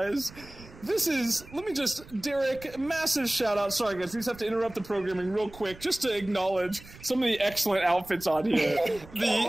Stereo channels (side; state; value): right; noise; rumble, 19 dB below the sound